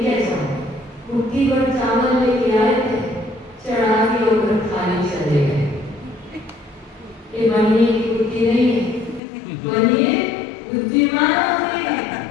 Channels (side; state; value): right; drops out; at 9.2 s